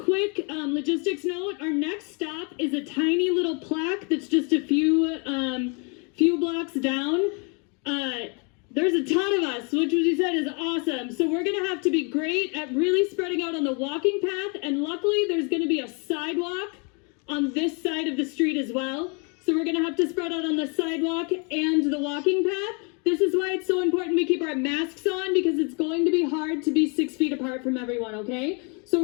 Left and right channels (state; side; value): quieter; right; 34.5 dB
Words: logistics note, our next stop is a tiny little plaque that's just a few blocks down. There's a ton of us, which you said is awesome. So we're gonna have to be great at really spreading out on the walking path, and luckily there's gonna be a sidewalk on this side of the street as well. So we're gonna have to spread out on the sidewalk and the walking path. This is why it's so important we keep our masks on, because it's going to be hard to be 6 feet apart from everyone, okay? So